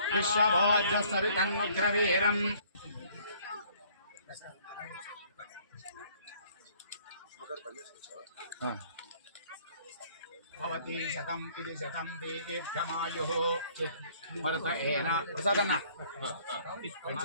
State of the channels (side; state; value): both; inverted; correlation -0.59